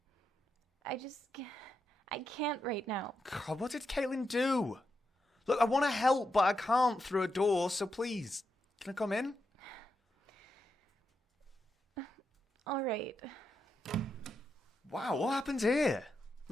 can't right now. God, what did Caitlin do? Look, I want to help, but I can't through a door, so please, can I come in? All right. Wow, what happened here?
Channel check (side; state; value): both; normal; correlation 0.85